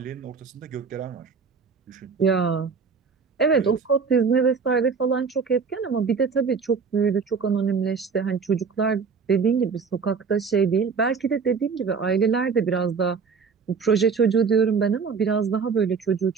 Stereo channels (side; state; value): left; quieter; 5.5 dB